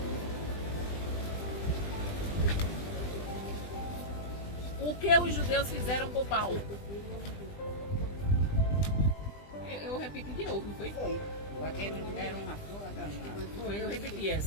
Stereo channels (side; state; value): right; late; 20 ms